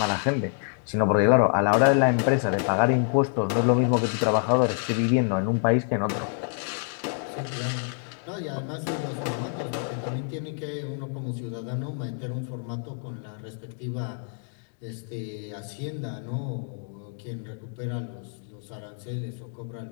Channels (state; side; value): silent; right; 60 dB below the other